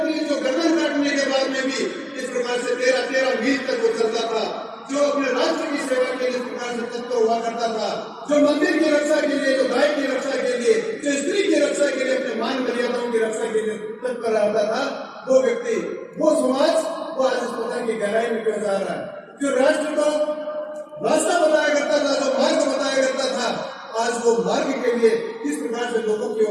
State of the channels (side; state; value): both; identical; correlation 1.00